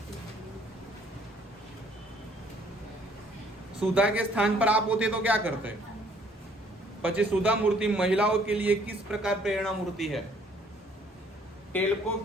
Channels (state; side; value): normal; both; correlation 0.61